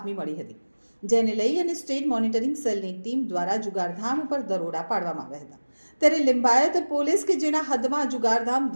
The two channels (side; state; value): both; inverted; correlation -1.00